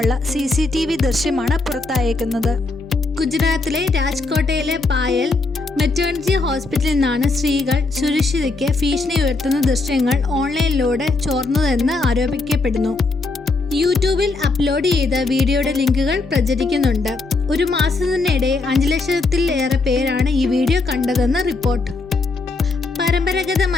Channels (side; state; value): right; quieter; 3.6 dB